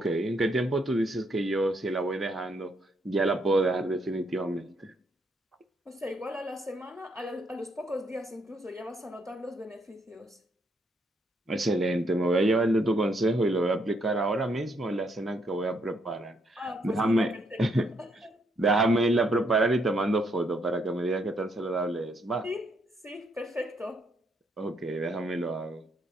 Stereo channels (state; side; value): normal; both; correlation 0.73